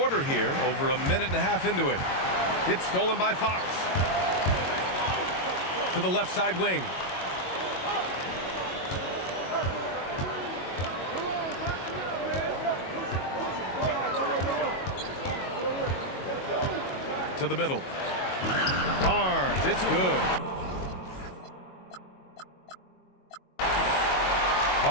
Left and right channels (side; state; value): right; late; 22 ms